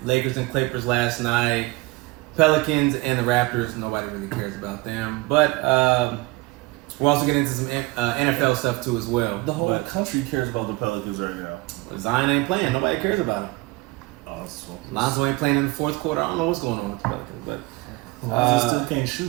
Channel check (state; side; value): quieter; left; 22.4 dB